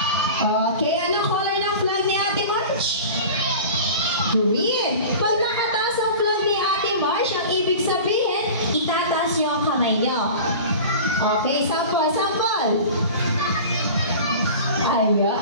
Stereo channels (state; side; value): inverted; both; correlation -0.37